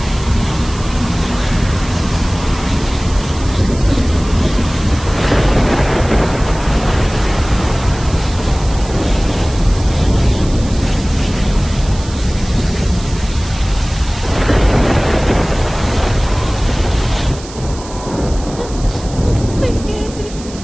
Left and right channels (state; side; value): noise; right; hiss, 16 dB below the sound